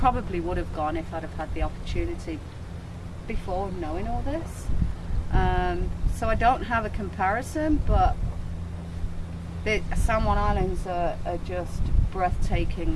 would have gone if I'd have had the opportunity before knowing all this. So I don't have a comparison, but the San Juan Islands are just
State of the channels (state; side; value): identical; both; correlation 1.00